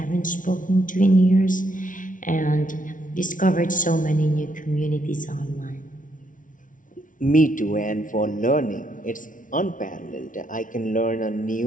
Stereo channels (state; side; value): late; right; 0.38 ms